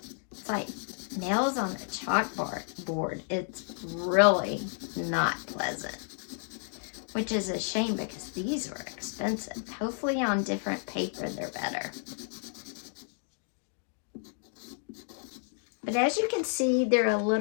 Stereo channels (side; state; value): right; silent; 57 dB below the other